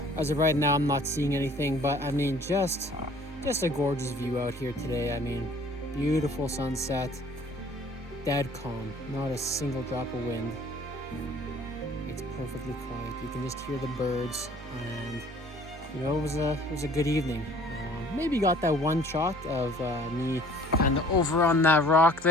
as of right now I'm not seeing anything. But I mean, just a gorgeous view out here today. I mean, beautiful sunset, dead calm, not a single drop of wind. It's perfectly quiet. You can just hear the birds, and you know, it was a good evening. Maybe got that one shot of me kind of over on that rock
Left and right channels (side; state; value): both; normal; correlation 0.53